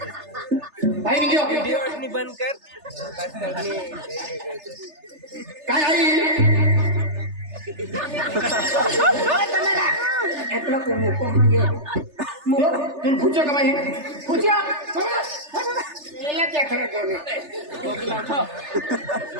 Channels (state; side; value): late; left; 3.3 ms